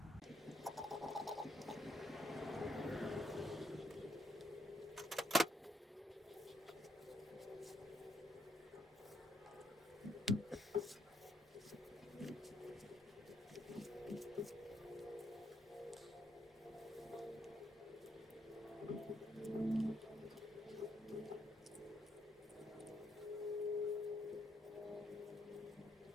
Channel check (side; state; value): both; normal; correlation 0.76